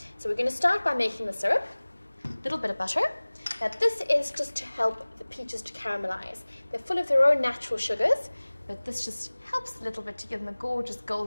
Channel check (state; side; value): inverted; both; correlation -1.00